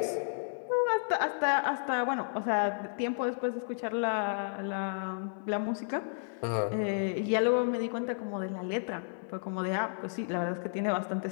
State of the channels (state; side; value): silent; right; 56 dB below the other